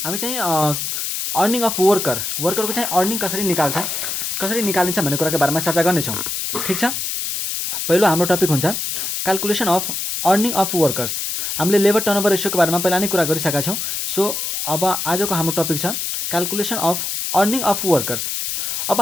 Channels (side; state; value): left; noise; hiss, 3 dB below the sound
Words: हामी चाहिँ अर्निङ अफ वर्करको चाहिँ अर्निङ कसरी निकालिन्छ भन्ने कुराको बारेमा चर्चा गर्नेछौँ। ठिक छ, पहिलो हाम्रो टपिक हुन्छ calculation of earning of workers. हामीले लेबर टर्नओभर रेसियोको बारेमा पहिला नै कुरा गरिसकेका छौँ। सो अब आजको हाम्रो टपिक छ calculation of earning of workers. अब